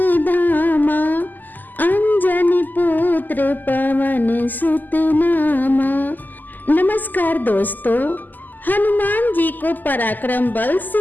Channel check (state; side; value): late; right; 0.086 ms